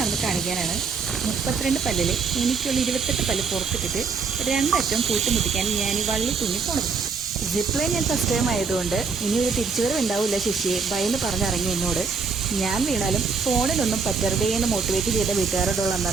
കാണിക്കാനാണ്. 32 പല്ലില് എനിക്കുള്ള 28 പല്ല് പുറത്തിട്ടിട്ട് 2 അറ്റവും കൂട്ടിമുട്ടിക്കാൻ ഞാൻ ഈ വള്ളി തുന്നിപ്പോണത്. സിപ്പ് ലൈൻ ഞാൻ ഫസ്റ്റ് ടൈം ആയതുകൊണ്ട് ഇനി ഒരു തിരിച്ചുവരവ് ഉണ്ടാവില്ല ശശിയെ ഭയന്ന് പറഞ്ഞിറങ്ങി എന്നോട്. ഞാൻ വീണാലും ഫോണിലൊന്നും പറ്റരുതേ എന്ന് മോട്ടിവേറ്റ് ചെയ്ത വീട്ടുകാരോടുള്ള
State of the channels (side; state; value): left; quieter; 5.0 dB